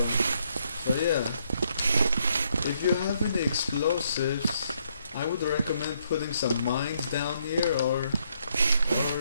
yeah. If you have any explosives, I would recommend putting some mines down here, or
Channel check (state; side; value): inverted; both; correlation -0.73